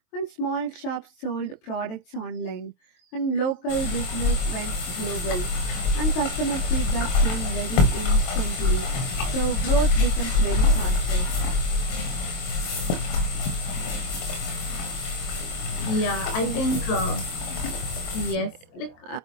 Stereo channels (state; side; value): late; right; 23 ms